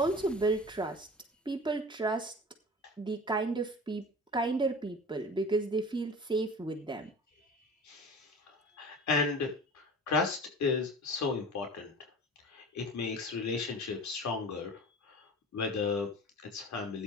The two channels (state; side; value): normal; both; correlation 0.38